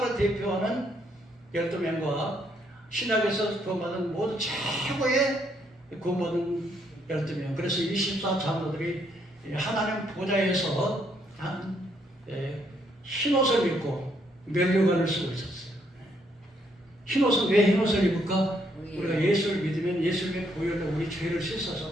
대표하는 12명과 신약에서 구원받은 모든 최고의 구원받은 12명. 그래서 24장로들이 하나님 보좌에서 흰옷을 입고 면류관을 쓰고 있었어요. 흰옷은 왜 흰옷을 입을까? 우리가 예수를 믿으면 예수님의 보혈로 우리 죄를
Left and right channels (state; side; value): normal; both; correlation 0.72